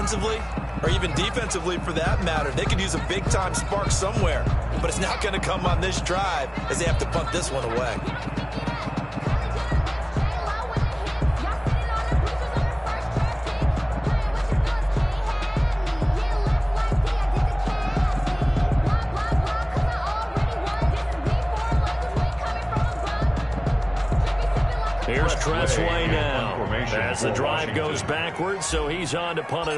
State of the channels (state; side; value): identical; both; correlation 1.00